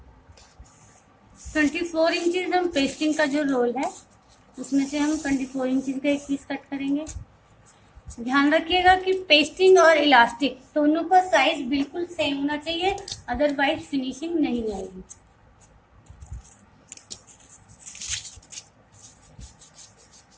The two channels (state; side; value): identical; both; correlation 1.00